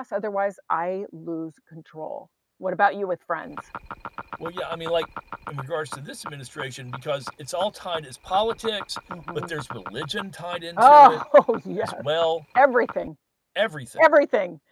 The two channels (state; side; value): identical; both; correlation 1.00